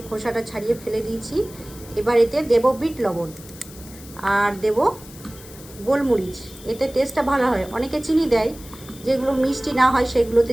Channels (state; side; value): noise; left; hiss, 19 dB below the sound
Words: খোসাটা ছাড়িয়ে ফেলে দিয়েছি। এবার এতে দেবো বিট লবণ আর দেব গোলমরিচ, এতে টেস্টটা ভালো হয়। অনেকে চিনি দেয়, যেগুলো মিষ্টি না হয় সেগুলোতে